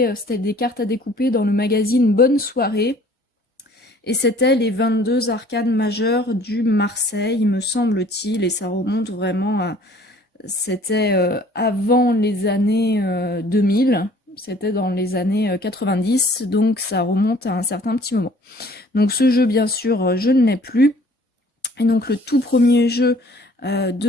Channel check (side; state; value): both; normal; correlation 0.54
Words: c'était des cartes à découper dans le magazine Bonne Soirée. Et c'était les 22 arcanes majeures du Marseille, me semble-t-il, et ça remonte vraiment à... C'était avant les années 2000, c'était dans les années 90, donc ça remonte à un certain petit moment. Donc ce jeu, bien sûr, je ne l'ai plus. Et donc le tout premier jeu